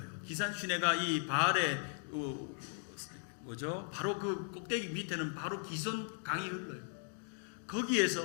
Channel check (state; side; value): silent; right; 53 dB below the other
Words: 기산 시내가 이 바알의 바로 그 꼭대기 밑에는 바로 기손 강이 흘러요.